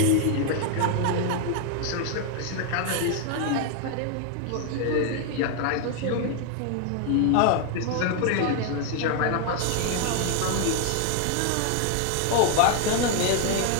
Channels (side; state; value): both; different; correlation 0.00